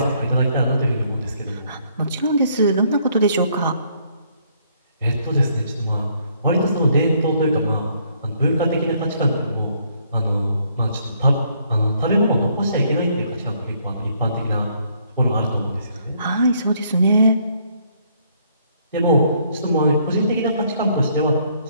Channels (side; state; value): both; inverted; correlation -0.67